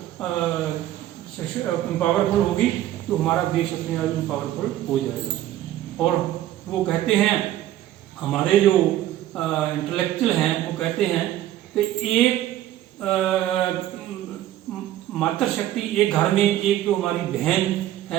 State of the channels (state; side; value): quieter; left; 13.3 dB